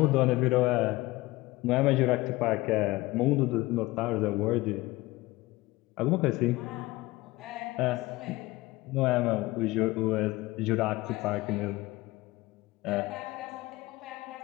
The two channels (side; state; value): right; quieter; 20.0 dB